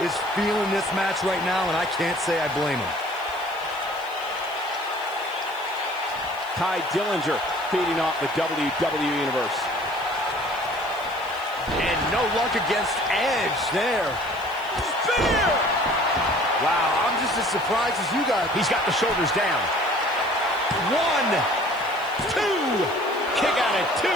is feeling this match right now, and I can't say I blame him. Ty Dillinger feeding off the WWE Universe. And no luck against Edge there. Spear! Wow, I'm just as surprised as you guys. He's got the shoulders down. 1, 2. Kick out at 2.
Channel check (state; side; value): noise; right; hiss, 23 dB below the sound